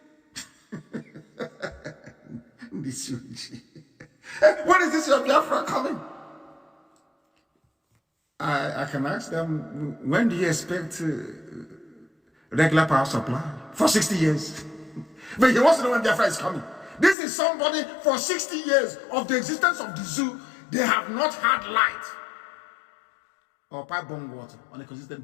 This when is this your Biafra coming? I can ask them, when do you expect regular power supply? For 60 years. But he wants to know when Biafra is coming. This is somebody for 60 years of the existence of the zoo, they have not had light or pipe-borne water on a consistent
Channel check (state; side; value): drops out; right; at 17.2 s